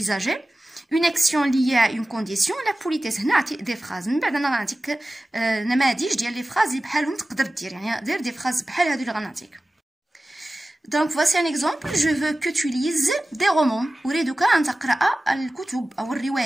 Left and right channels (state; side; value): normal; both; correlation 0.96